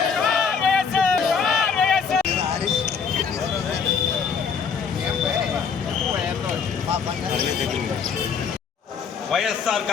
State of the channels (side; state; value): right; quieter; 6.2 dB